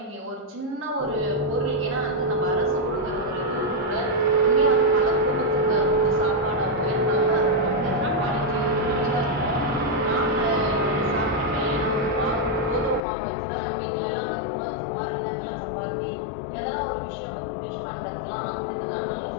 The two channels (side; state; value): right; drops out; at 13.0 s